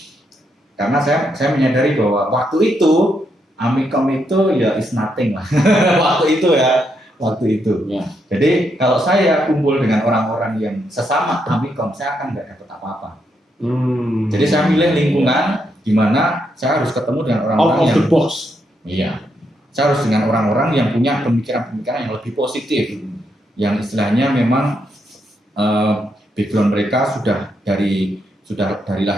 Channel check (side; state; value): both; normal; correlation 0.79